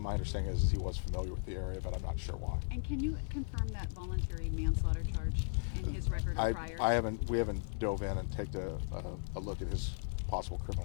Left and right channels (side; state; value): right; silent; digital silence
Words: understanding is he was familiar with the area, but I'm not sure why. And can you confirm that voluntary manslaughter charge in his record or prior? We haven't dove in and taken a look at his possible